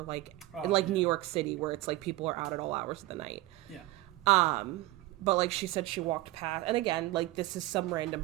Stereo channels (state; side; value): quieter; left; 18.0 dB